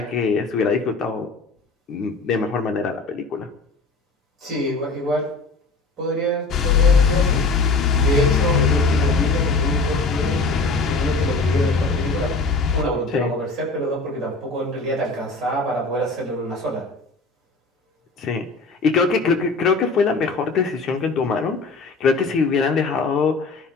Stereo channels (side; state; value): right; quieter; 3.8 dB